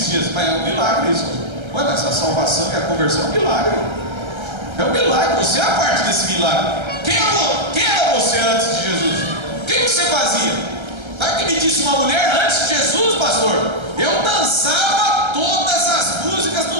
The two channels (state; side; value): late; left; 1.3 ms